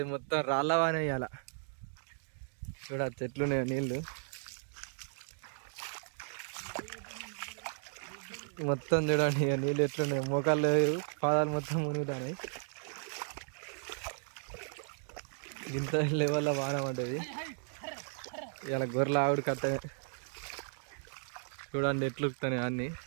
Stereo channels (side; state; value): left; silent; digital silence